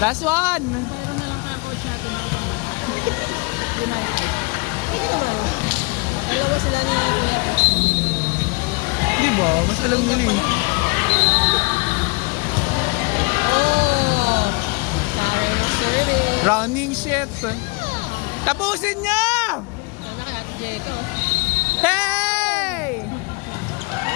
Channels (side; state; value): right; quieter; 28.7 dB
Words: one! Meron na lang kaya coach natin. United. Pwede naman. Dalawa sila ni Kuya ko. Di ba? Mas alam nila eh. Oh! Sayang ang service. Running shit. Tapusin niya! Sana kay Ate Jeka. Hey!